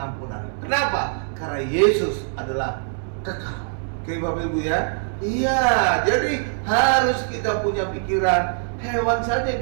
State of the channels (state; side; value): silent; left; digital silence